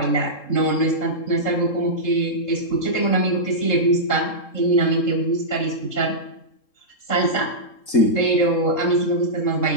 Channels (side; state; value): right; late; 3.7 ms